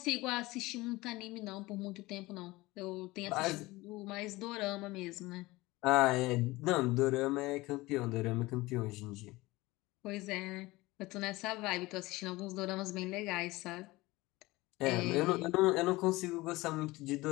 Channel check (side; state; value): right; quieter; 20.5 dB